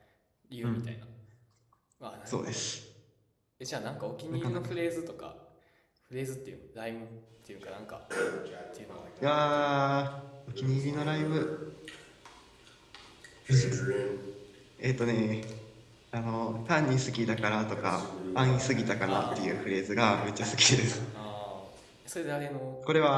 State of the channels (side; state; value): both; identical; correlation 1.00